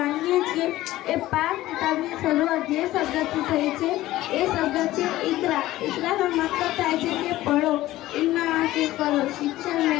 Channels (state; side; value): quieter; right; 16.0 dB